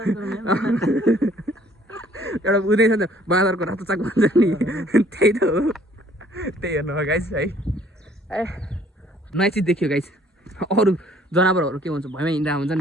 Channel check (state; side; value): normal; both; correlation 0.59